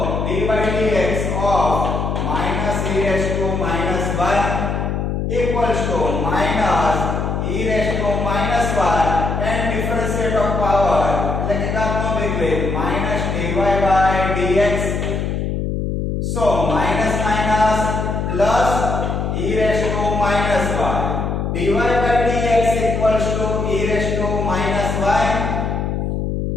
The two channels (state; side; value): noise; left; hum, 1 dB below the sound